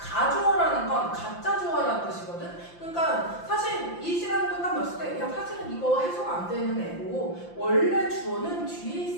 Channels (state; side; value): late; right; 5.8 ms